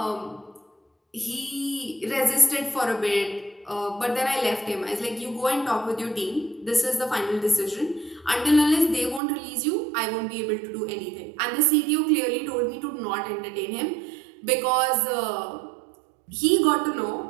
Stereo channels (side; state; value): left; drops out; at 9.2 s